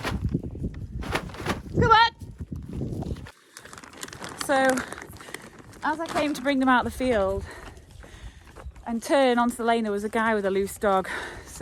Go on! So, as I came to bring them out of the field and turn onto the lane, there was a guy with a loose dog.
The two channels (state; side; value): identical; both; correlation 1.00